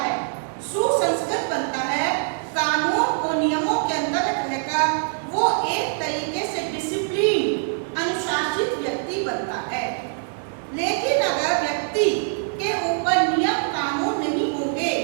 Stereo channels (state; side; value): silent; left; digital silence